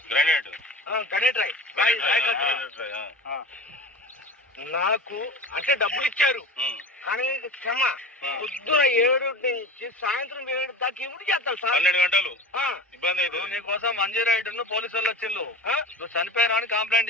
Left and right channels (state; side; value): normal; both; correlation 0.32